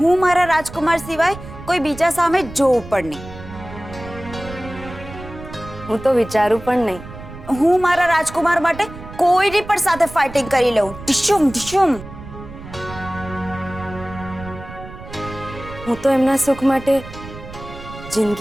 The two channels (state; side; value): noise; right; rumble, 14 dB below the sound